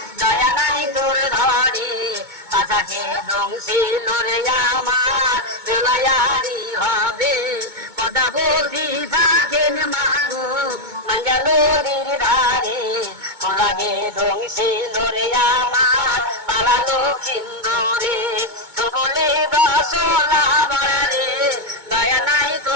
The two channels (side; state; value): left; late; 2.2 ms